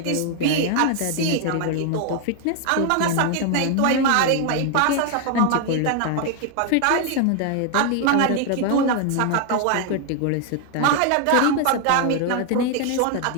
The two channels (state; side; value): different; both; correlation 0.00